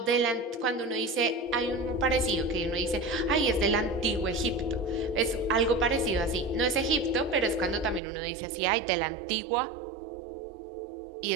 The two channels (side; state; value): left; drops out; at 8.0 s